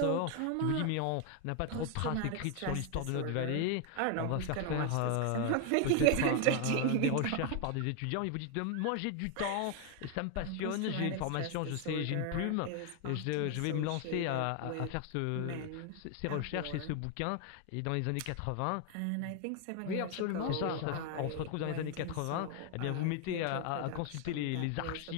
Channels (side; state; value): both; different; correlation 0.01